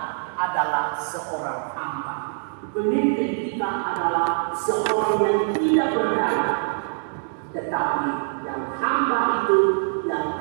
adalah seorang hamba. Pemimpin kita adalah seorang yang tidak berdaya. Tetapi yang hamba itu, yang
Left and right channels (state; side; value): silent; left; digital silence